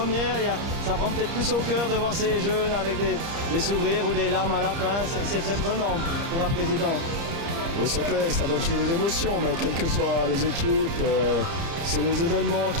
ça prend peut-être plus au cœur de voir ces jeunes avec des sourires ou des larmes à la fin. C'est très prenant pour un président. Oui, c'est clair, ça donne toujours des émotions, mais quelles que soient les équipes, c'est les événements qui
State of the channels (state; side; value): late; left; 30 ms